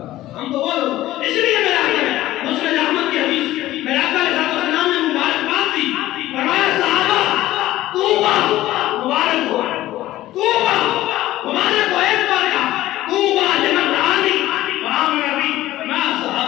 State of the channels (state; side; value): quieter; right; 15.4 dB